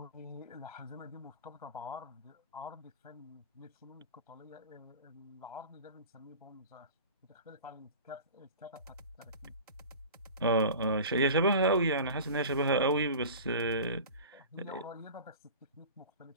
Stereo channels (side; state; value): both; inverted; correlation -0.37